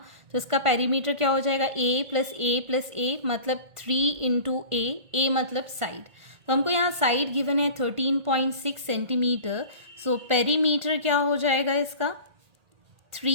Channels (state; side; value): late; left; 1.8 ms